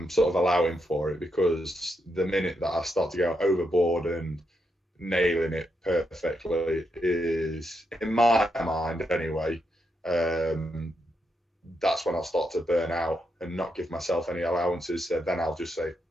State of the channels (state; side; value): normal; both; correlation 0.81